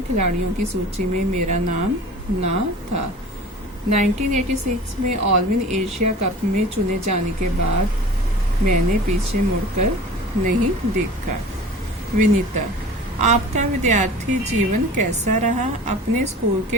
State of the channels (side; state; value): both; normal; correlation 0.40